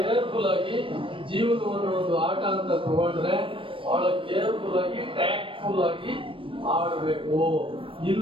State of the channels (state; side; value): late; left; 0.25 ms